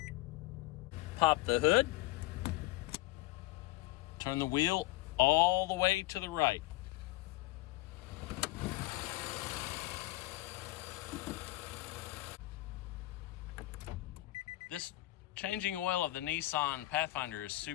Pop the hood. Turn the wheel all the way to the right. This changing oil of the Nissan Pathfinder is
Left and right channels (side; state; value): right; quieter; 18.5 dB